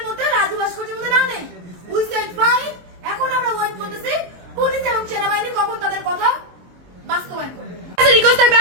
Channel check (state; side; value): late; left; 23 ms